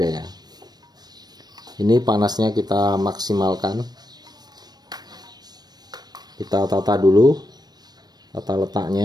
ya. Ini panasnya kita maksimalkan. Kita tata dulu, tata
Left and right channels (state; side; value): late; left; 0.19 ms